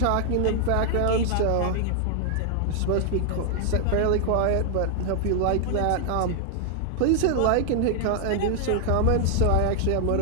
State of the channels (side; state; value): both; different; correlation 0.00